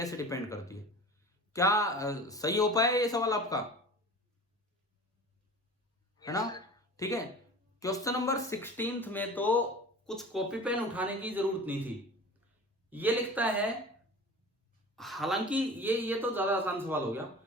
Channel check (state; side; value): normal; both; correlation 0.37